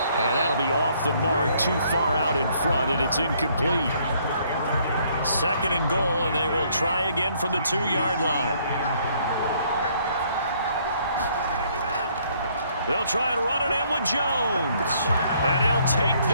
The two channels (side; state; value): both; inverted; correlation -0.66